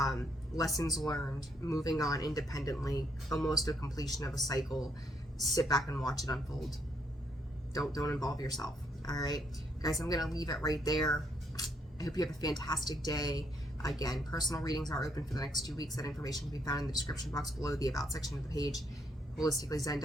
Lessons learned, moving on independently, almost a completion of a cycle. Sit back and watch it unfold. Don't involve yourself. All right, guys, I'm going to leave it right there. I hope you have a fantastic day. Again, personal readings are open for the next 2 weeks. That information can be found in the description box below, the About section of the page,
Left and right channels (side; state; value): both; normal; correlation 0.73